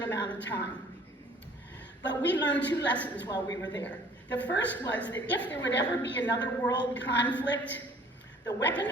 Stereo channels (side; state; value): both; normal; correlation 0.54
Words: amount of time. But we learned two lessons while we were there. The first was that if there would ever be another world conflict, the weapon